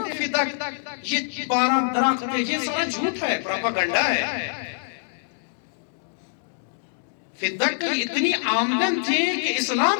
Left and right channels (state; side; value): silent; right; digital silence